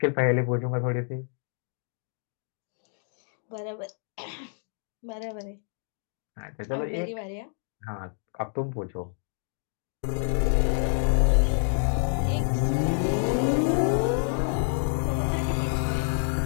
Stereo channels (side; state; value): right; silent; digital silence